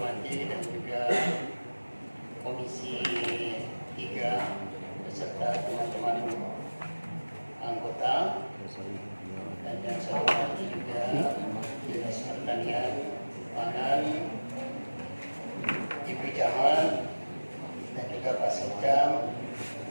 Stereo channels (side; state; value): both; inverted; correlation -1.00